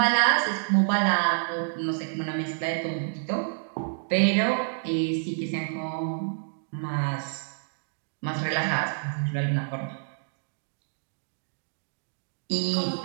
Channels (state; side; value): silent; left; digital silence